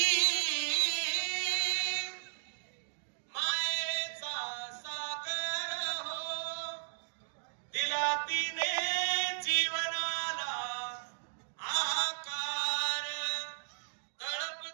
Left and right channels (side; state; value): left; silent; digital silence